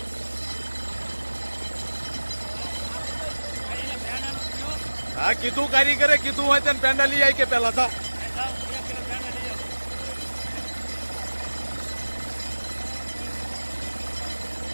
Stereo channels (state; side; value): inverted; both; correlation -1.00